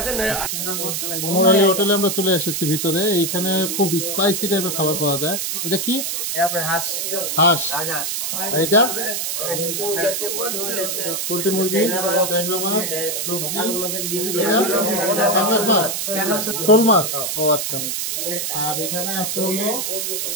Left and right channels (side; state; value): right; noise; hiss, 2 dB below the sound